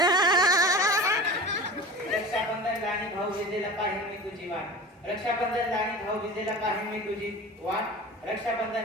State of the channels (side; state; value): both; normal; correlation 0.35